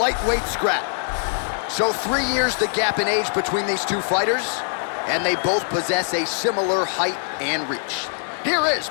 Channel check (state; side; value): silent; right; 64 dB below the other